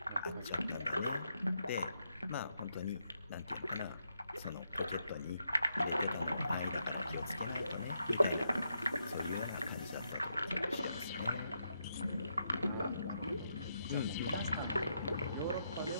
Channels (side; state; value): both; inverted; correlation -0.81